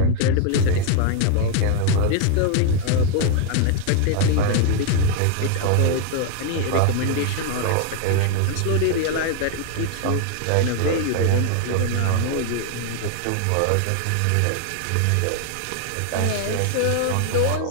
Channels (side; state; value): both; different; correlation 0.00